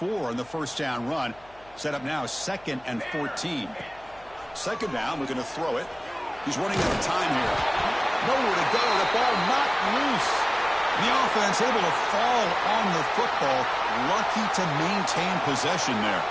on the first down run. Set up now, 2nd and 14. Second down, we're going to throw it. He's running out of time here. Nowhere to go. The ball not loose. The offense able to fall on the football. Lucky to maintain possession there.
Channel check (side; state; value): left; noise; hum, 27 dB below the sound